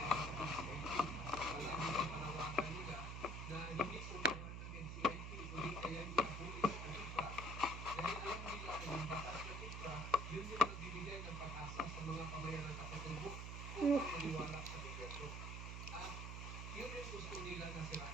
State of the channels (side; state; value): right; noise; hum, 5 dB below the sound